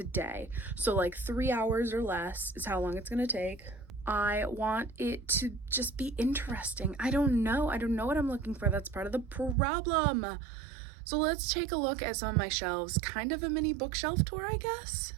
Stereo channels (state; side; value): drops out; left; at 9.6 s